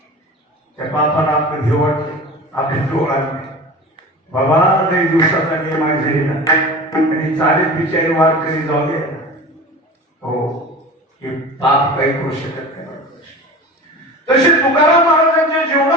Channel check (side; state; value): both; normal; correlation 0.34